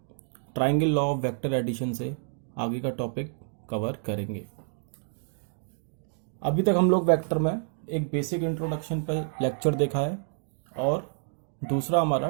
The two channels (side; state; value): left; silent; digital silence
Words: triangle law of vector addition से आगे का टॉपिक कवर करेंगे। अभी तक हम लोग वेक्टर में एक बेसिक इंट्रोडक्शन पर लेक्चर देखा है और दूसरा